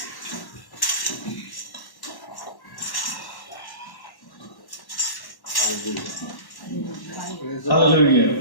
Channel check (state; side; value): late; right; 1.1 ms